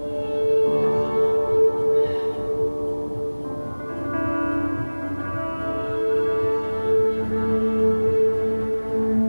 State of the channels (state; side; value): inverted; both; correlation -1.00